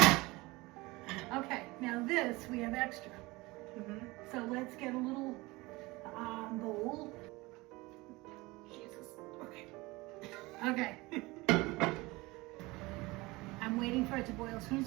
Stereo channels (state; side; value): quieter; left; 22.2 dB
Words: Okay, now this we have extra. So let's get a little bowl. Jesus. Okay. Okay. I'm waiting for it to boil. As soon